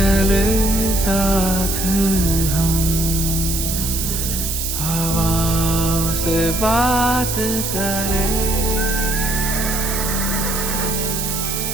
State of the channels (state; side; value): noise; right; hiss, 3 dB below the sound